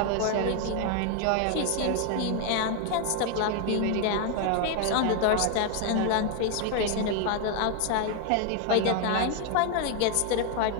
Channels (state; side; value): different; both; correlation 0.00